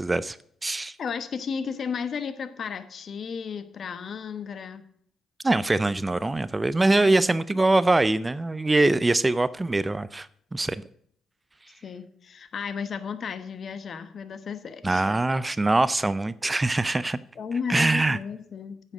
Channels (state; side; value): normal; both; correlation 0.96